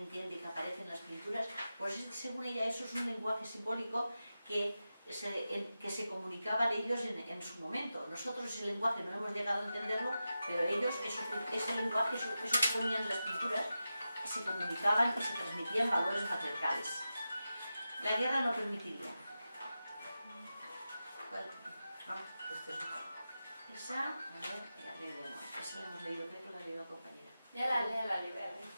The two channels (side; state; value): both; inverted; correlation -0.92